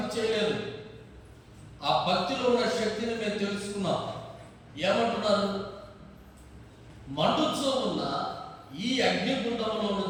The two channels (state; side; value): identical; both; correlation 1.00